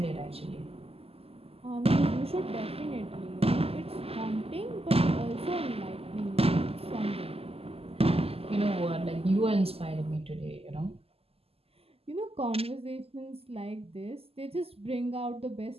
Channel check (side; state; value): left; late; 0.29 ms